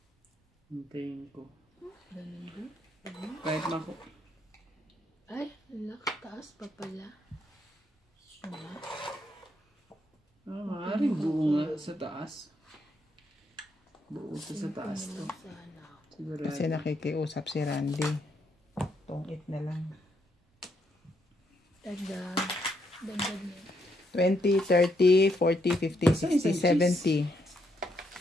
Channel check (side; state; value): both; normal; correlation 0.76